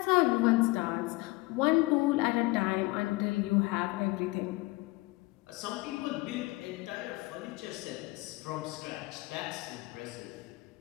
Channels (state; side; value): quieter; right; 22.1 dB